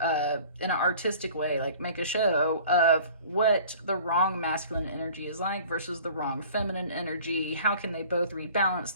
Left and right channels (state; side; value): inverted; both; correlation -0.46